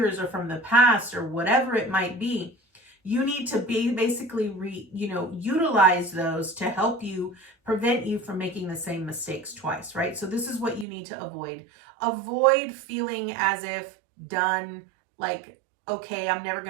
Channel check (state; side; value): drops out; left; at 10.9 s